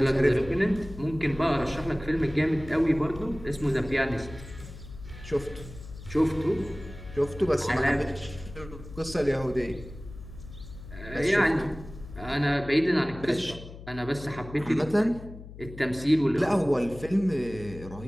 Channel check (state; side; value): noise; left; hum, 15 dB below the sound